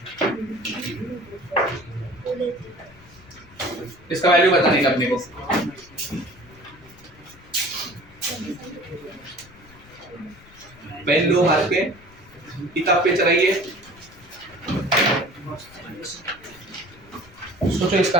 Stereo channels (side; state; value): left; noise; rumble, 24 dB below the sound